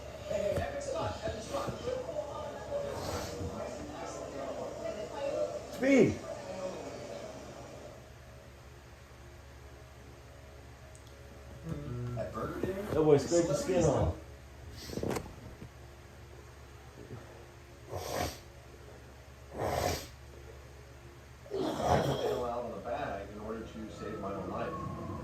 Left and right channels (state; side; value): identical; both; correlation 1.00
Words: Hey, epic spot, epic spot. Speed! At Burger King? That boy scraped the skin off. Bail out on the bag in order to save my own life.